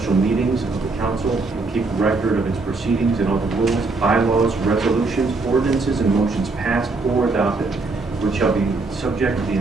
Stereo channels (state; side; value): quieter; left; 3.7 dB